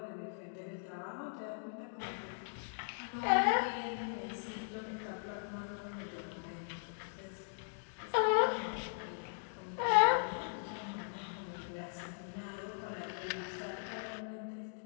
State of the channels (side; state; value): right; silent; digital silence